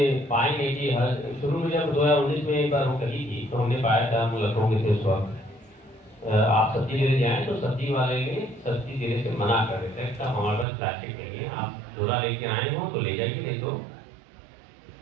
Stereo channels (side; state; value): left; drops out; at 10.7 s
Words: पाएंगे कि शुरू में जब 2019 में एक बार रोक लगी थी तो हमने पाया था, हम लखनऊ के थे उस वक्त, आप सब्जी लेने जाएं तो सब्जी वाले ने सब्जी देने से मना कर देते हैं कि हमारे पास प्लास्टिक नहीं है, आप झोला लेके आए हो तो ले जाइए, नहीं तो